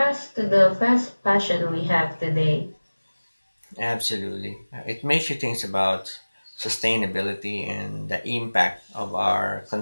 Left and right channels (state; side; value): inverted; both; correlation -1.00